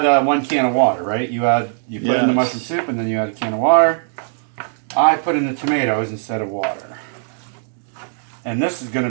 1 can of water, right? You put in the mushroom soup and then you add a can of water. I put in the tomatoes instead of water, and this is going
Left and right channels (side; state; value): left; silent; digital silence